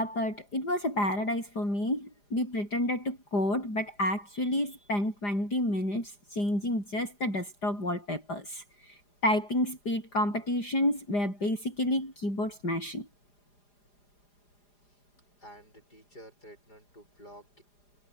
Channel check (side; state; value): right; late; 4.9 ms